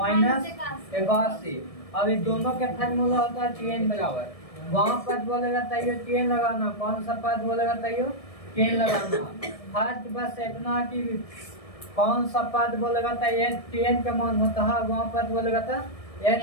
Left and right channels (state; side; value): late; right; 1.7 ms